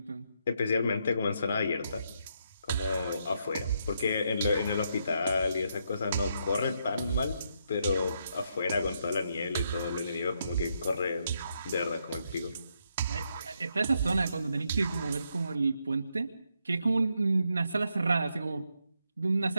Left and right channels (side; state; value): both; inverted; correlation -0.78